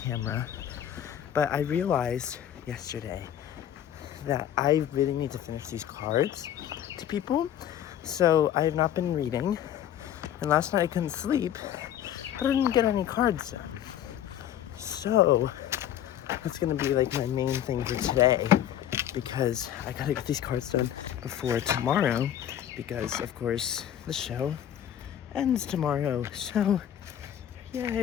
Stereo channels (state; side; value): quieter; right; 10.6 dB